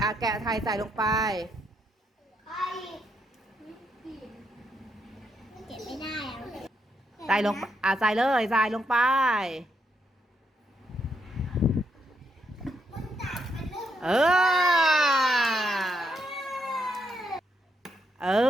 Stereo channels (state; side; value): normal; both; correlation 0.79